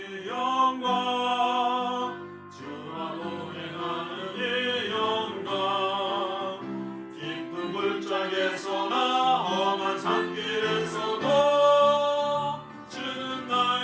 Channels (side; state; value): both; identical; correlation 1.00